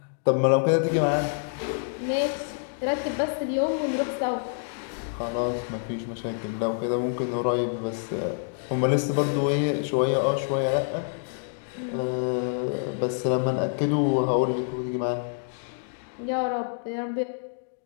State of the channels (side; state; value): right; silent; digital silence